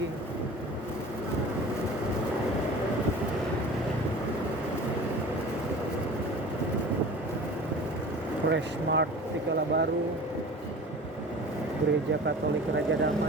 Fresh Mart Tikala Baru. Gereja Katolik Raja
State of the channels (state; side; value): normal; both; correlation 0.39